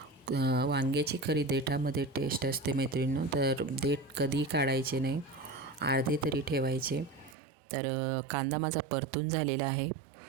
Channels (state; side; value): drops out; left; at 7.4 s